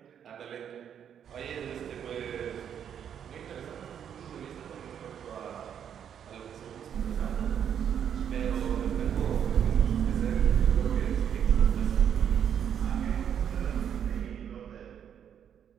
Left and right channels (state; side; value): quieter; left; 8.7 dB